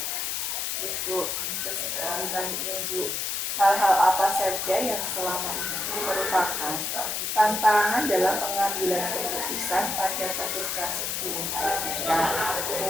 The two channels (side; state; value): left; noise; hiss, 1 dB below the sound